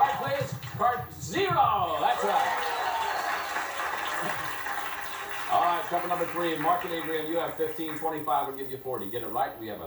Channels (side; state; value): both; identical; correlation 1.00